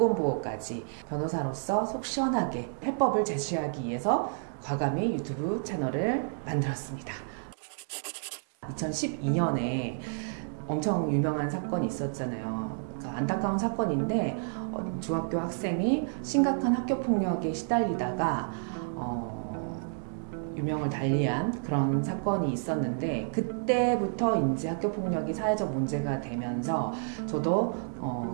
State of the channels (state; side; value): silent; left; digital silence